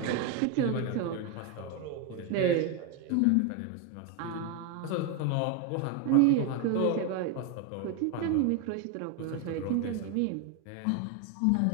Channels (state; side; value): different; both; correlation 0.01